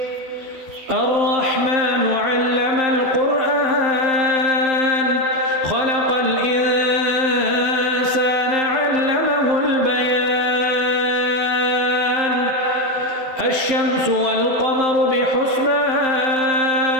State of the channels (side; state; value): left; late; 12 ms